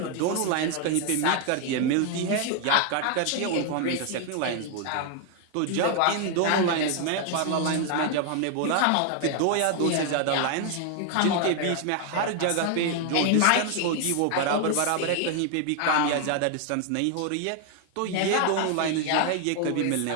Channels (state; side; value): different; both; correlation 0.00